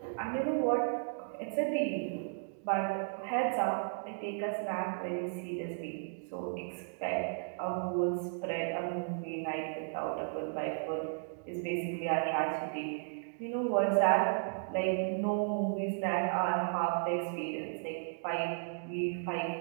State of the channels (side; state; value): left; silent; digital silence